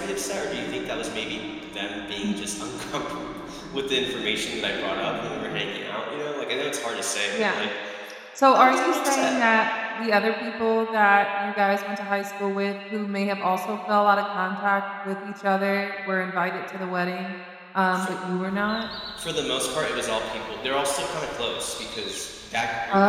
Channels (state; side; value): identical; both; correlation 1.00